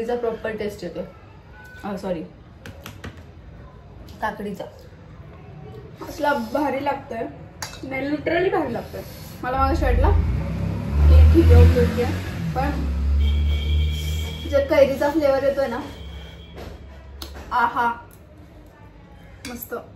प्रॉपर टेस्ट येतो. सॉरी काकडीचा. असला भारी लागतोय. नाही लिटरली भारी लागतोय. मला माझ्या शर्टला ठीक आहे पण जे कैरीचा फ्लेवर येतोय ना, आहा मस्त.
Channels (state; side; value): identical; both; correlation 1.00